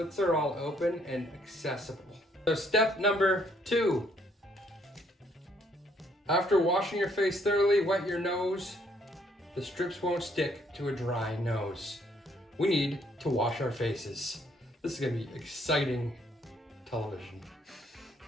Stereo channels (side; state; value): both; normal; correlation 0.68